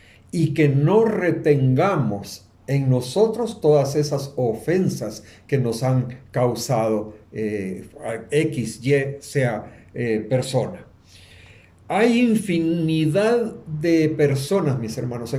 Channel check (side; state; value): both; identical; correlation 1.00